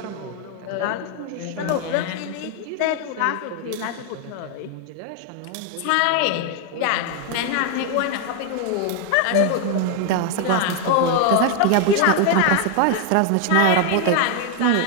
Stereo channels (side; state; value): both; different; correlation 0.00